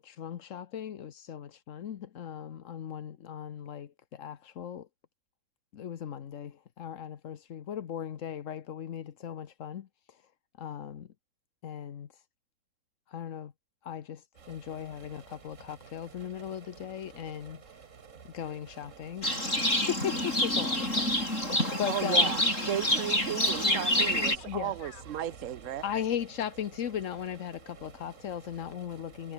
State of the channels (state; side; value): late; right; 3.7 ms